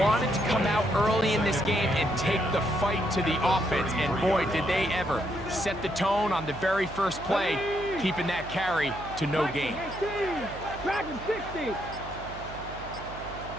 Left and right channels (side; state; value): right; noise; hum, 13 dB below the sound